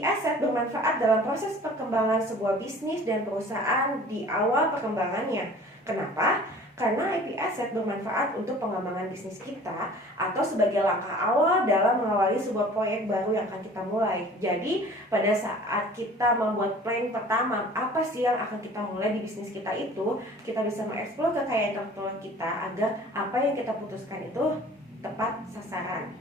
asset bermanfaat dalam proses perkembangan sebuah bisnis dan perusahaan di awal perkembangannya. Kenapa? Karena IP asset bermanfaat untuk pengembangan bisnis kita atau sebagai langkah awal dalam mengawali sebuah proyek baru yang akan kita mulai. Jadi pada saat kita membuat plan pertama, apa sih yang akan kita mulai di bisnis kita itu, kita bisa mengeksplor kekayaan intelektual kita agar apa yang kita putuskan itu tepat sasaran.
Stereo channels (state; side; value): normal; both; correlation 0.47